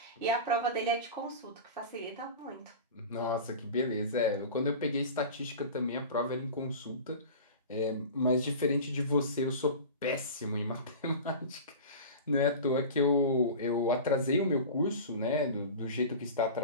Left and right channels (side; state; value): both; inverted; correlation -0.32